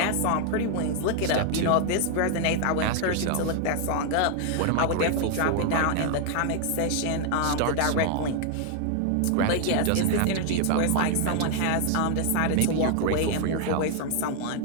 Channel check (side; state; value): both; different; correlation 0.00